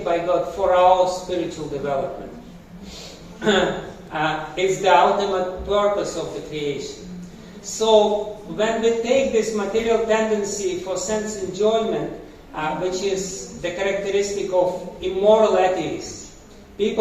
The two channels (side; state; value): both; identical; correlation 1.00